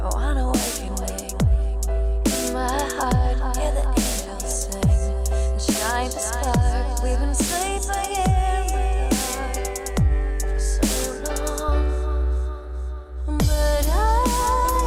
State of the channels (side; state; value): both; identical; correlation 1.00